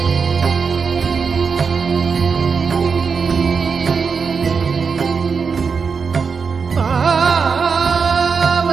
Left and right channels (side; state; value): left; quieter; 5.5 dB